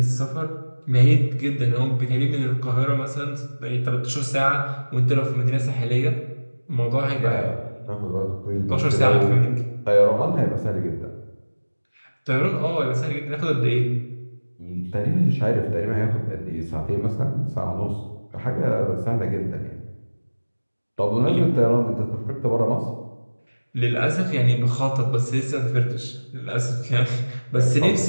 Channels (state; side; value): inverted; both; correlation -1.00